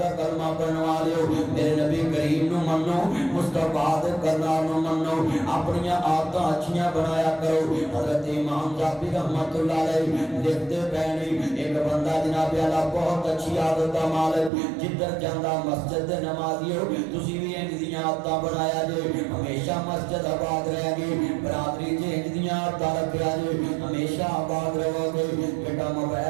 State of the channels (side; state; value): left; drops out; at 14.5 s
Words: کلمہ پڑھن والے میرے نبی کریم نو منو مصطفیٰ دے کرنار نو منو اپنی عادتاں اچھیاں بنایا کرو حضرت امام ذاتی رحمت اللہ علیہ لکھتے پہنے ایک بندہ جناب اللہ بہت اچھی عادت کا مالک جدھر جاندہ مسجد دے نمازی ہو تسی بھی انجدیاں عادتاں بنایا جے ہمیشہ مسجد آباد رہے گی برادری جے انجدیاں عادتاں رکھیا جے ہمیشہ آباد رہو گے بیٹا